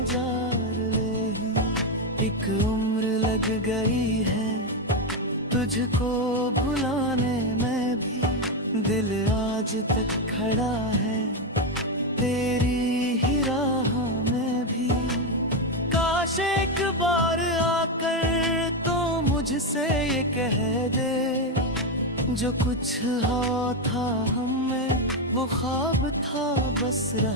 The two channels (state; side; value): normal; both; correlation 0.07